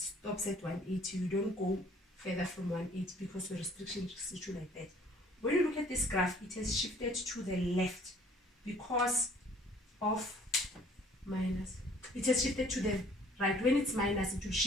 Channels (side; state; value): both; normal; correlation 0.56